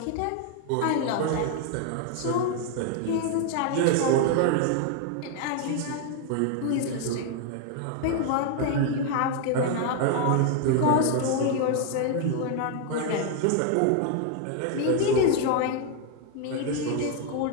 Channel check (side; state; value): both; different; correlation 0.00